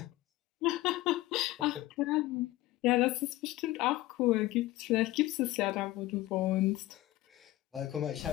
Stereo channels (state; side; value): quieter; right; 17.0 dB